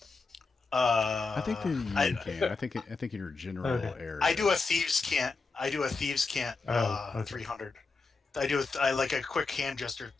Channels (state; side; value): quieter; right; 4.1 dB